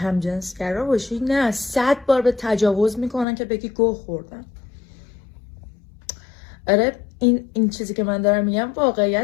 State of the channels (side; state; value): right; drops out; at 3.2 s